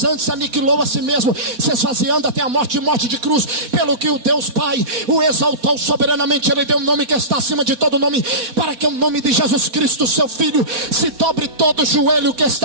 antes aniquilou a si mesmo, se esvaziando até a morte de cruz, pelo que o Deus Pai o exaltou soberanamente. Ele deu um nome que está acima de todo nome, para que o nome de Jesus Cristo, seu Filho, se dobre todo joelho que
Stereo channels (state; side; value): late; left; 4.3 ms